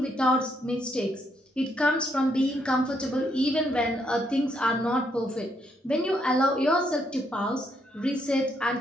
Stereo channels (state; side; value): normal; both; correlation 0.74